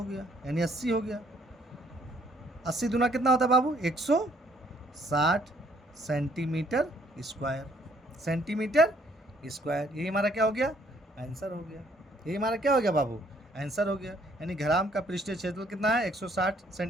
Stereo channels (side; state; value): both; normal; correlation 0.65